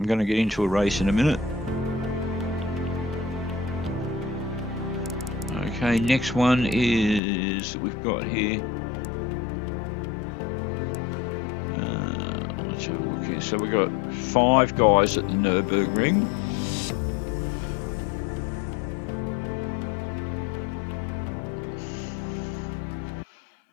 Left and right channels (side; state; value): right; drops out; at 7.2 s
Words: going to get into a race in a minute. Okay, next one is, we've got here. Let's have a look here. So we've got 5 guys at the Nürburgring.